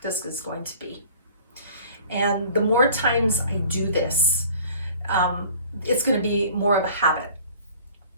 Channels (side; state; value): both; inverted; correlation -0.49